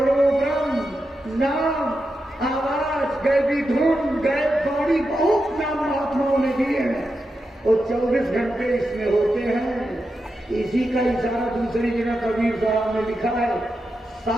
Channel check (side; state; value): both; normal; correlation 0.88